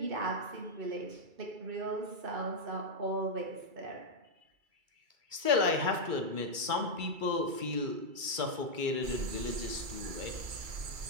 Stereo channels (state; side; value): late; left; 2.3 ms